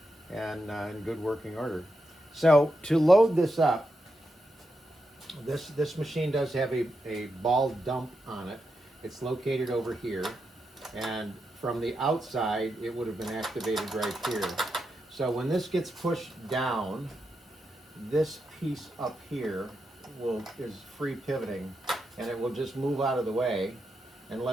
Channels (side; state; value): both; normal; correlation 0.85